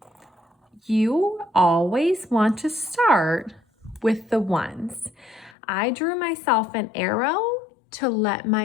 you always want to start with the ones. I drew myself an arrow to let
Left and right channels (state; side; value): drops out; right; at 5.6 s